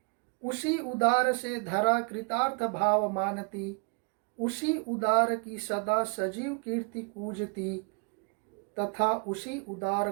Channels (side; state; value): left; quieter; 34.8 dB